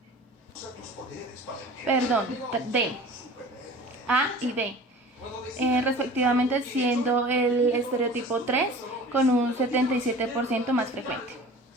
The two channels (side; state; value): both; normal; correlation 0.41